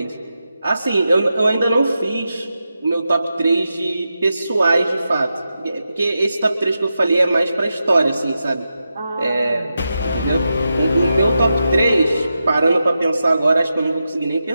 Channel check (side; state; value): both; inverted; correlation -0.89